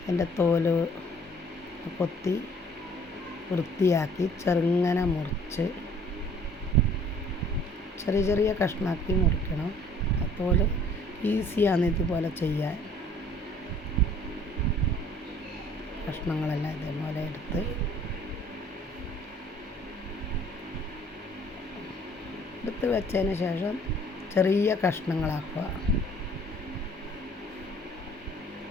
അതിൻ്റെ തോല് കൊത്തി വൃത്തിയാക്കി ചെറുങ്ങനെ മുറിച്ച് ചെറിയ ചെറിയ കഷ്ണമാക്കി മുറിക്കണം. അപ്പോൾ ഈസിയാണ് ഇതുപോലെ ചെയ്യാൻ. കഷ്ണങ്ങളെല്ലാം ഇതേപോലെ എടുത്ത് വെച്ചതിന് ശേഷം ചെറിയ കഷ്ണങ്ങളാക്കുക.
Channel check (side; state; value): both; normal; correlation 0.55